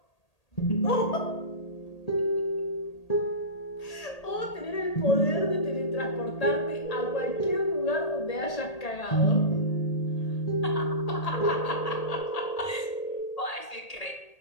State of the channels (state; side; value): late; right; 1.8 ms